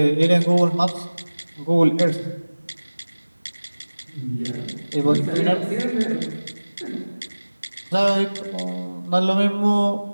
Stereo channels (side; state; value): both; inverted; correlation -1.00